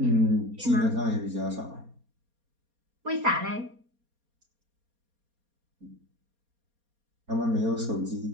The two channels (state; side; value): late; left; 4.3 ms